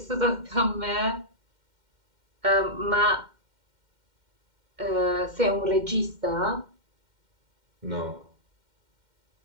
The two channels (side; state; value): left; late; 2.1 ms